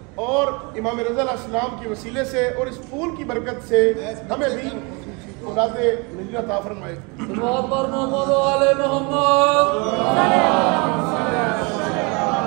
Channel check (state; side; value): quieter; left; 30.0 dB